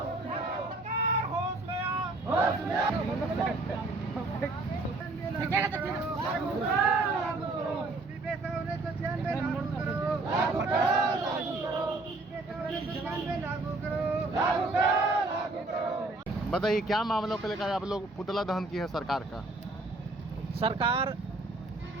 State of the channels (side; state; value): left; quieter; 3.1 dB